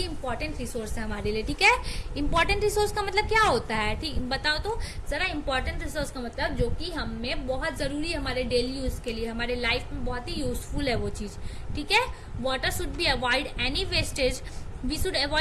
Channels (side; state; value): both; identical; correlation 1.00